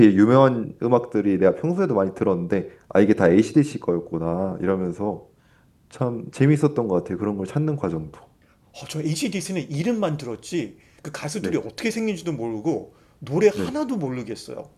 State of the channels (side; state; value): both; identical; correlation 1.00